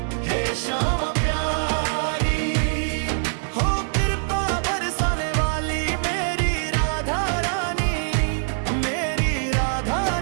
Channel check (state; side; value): silent; left; digital silence